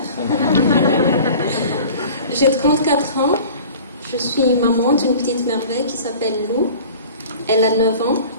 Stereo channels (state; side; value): inverted; both; correlation -0.43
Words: J'ai 34 ans, je suis maman d'une petite merveille qui s'appelle Lou, elle a 9 ans.